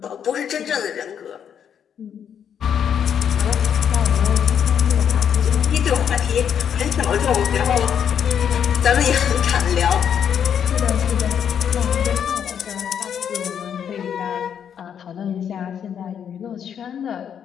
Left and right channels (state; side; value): quieter; right; 8.4 dB